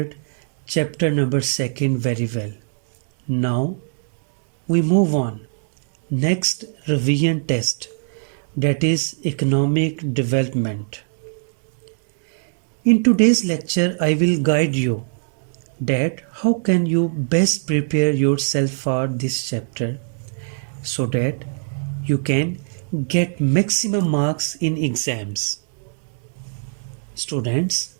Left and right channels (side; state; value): left; silent; digital silence